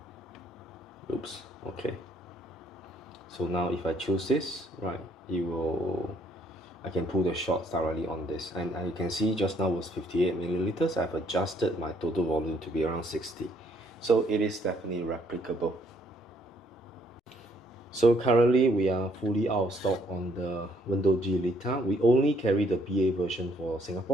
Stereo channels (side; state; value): both; normal; correlation 0.67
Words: Oops, okay. So now if I choose this, right, I can pull the shots directly on this. And you can see just now was 58 milliliters. I've adjusted my total volume to be around 60. So it is definitely replicable. So currently we are fully out of stock on the Wendougee Lita. We only carry the BA version for